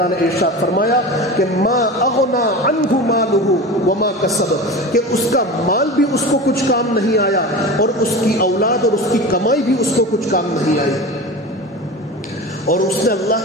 نے ارشاد فرمایا کہ ما اغنا عنہ مالہ وما کسب, کہ اس کا مال بھی اس کو کچھ کام نہیں آیا اور اس کی اولاد اور اس کی کمائی بھی اس کو کچھ کام نہیں آئی. اور اس نے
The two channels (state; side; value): normal; both; correlation 0.30